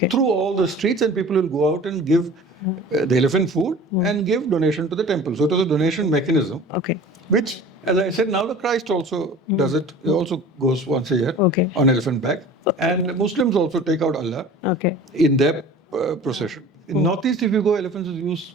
through all the streets, and people will go out and give the elephant food and give donation to the temple. So it was a donation mechanism, which, as I said, now the Christ also does it. He also goes once a year on elephant back. And Muslims also take out Allah in their procession. In Northeast, if you go, elephants is used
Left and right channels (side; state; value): both; normal; correlation 0.42